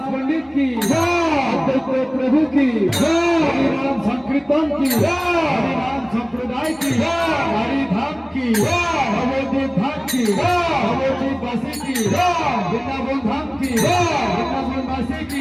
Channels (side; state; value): both; identical; correlation 1.00